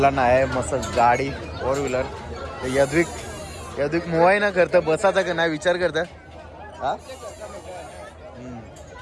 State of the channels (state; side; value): identical; both; correlation 1.00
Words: आहे मस्त गाडी 4 व्हीलर. यद्विक मोबाईल ना करतं बसायचा का नाही विचार करतं. हा